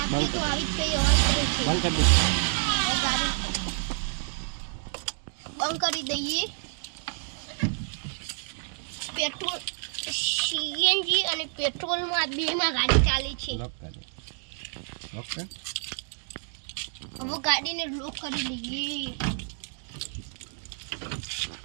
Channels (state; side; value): silent; left; 59 dB below the other